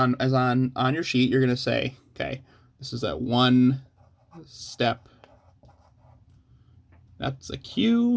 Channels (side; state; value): both; identical; correlation 1.00